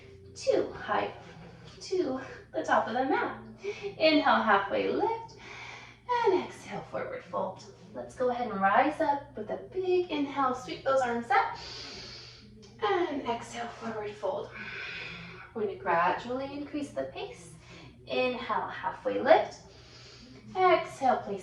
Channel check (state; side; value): identical; both; correlation 1.00